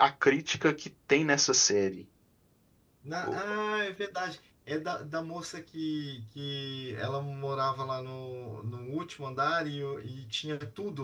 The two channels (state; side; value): identical; both; correlation 1.00